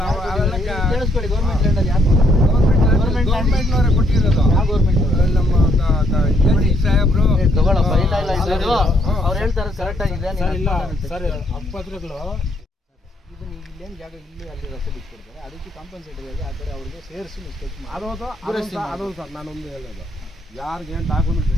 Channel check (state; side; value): normal; both; correlation 0.71